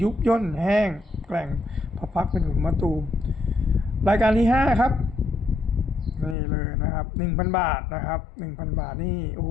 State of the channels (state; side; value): drops out; right; at 6.4 s